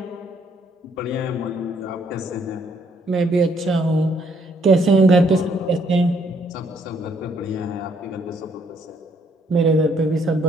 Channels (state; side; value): normal; both; correlation 0.68